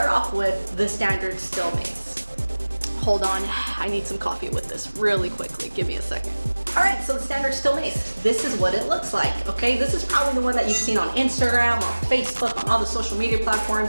off with the standard steel mace. Hold on, I need some coffee with this really quickly. Give me a second. All right, so the standard steel mace, this is what it looks like, okay? This is probably the one that you've seen on Instagram, on Facebook, on all the social media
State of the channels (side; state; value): both; inverted; correlation -1.00